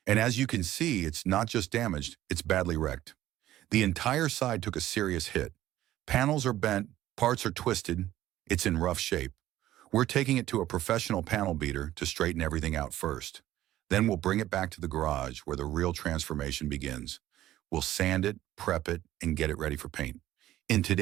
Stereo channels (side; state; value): left; quieter; 14.0 dB